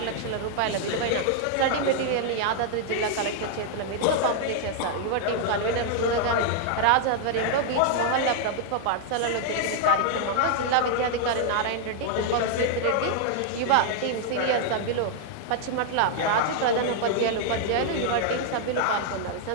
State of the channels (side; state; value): both; different; correlation 0.00